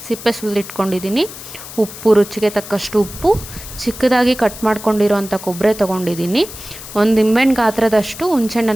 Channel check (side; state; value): left; noise; hiss, 13 dB below the sound